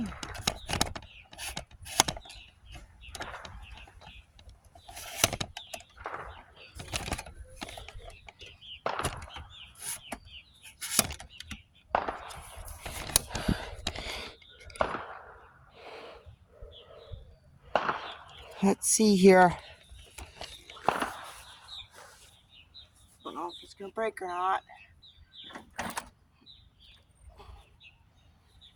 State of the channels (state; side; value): identical; both; correlation 1.00